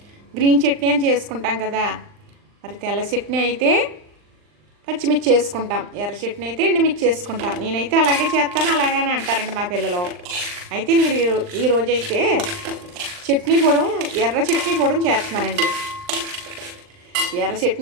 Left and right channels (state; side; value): late; left; 39 ms